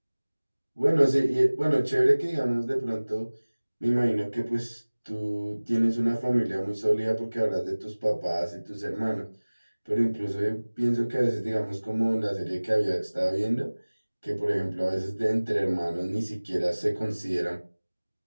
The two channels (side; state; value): both; inverted; correlation -1.00